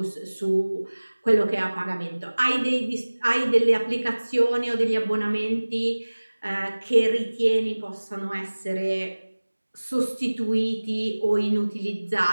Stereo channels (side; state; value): both; inverted; correlation -1.00